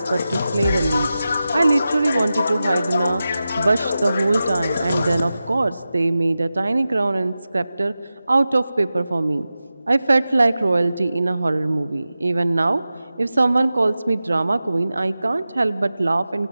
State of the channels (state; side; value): inverted; both; correlation -0.94